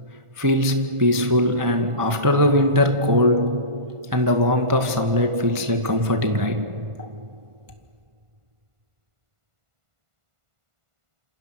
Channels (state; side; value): late; left; 1.5 ms